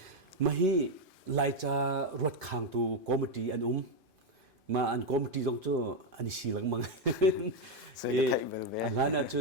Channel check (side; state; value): left; late; 2.5 ms